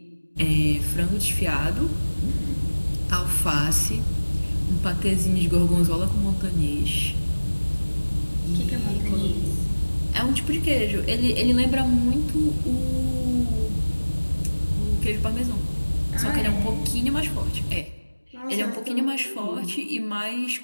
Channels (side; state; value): both; inverted; correlation -1.00